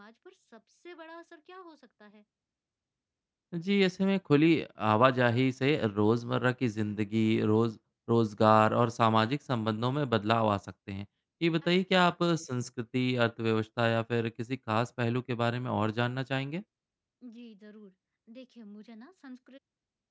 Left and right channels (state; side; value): identical; both; correlation 1.00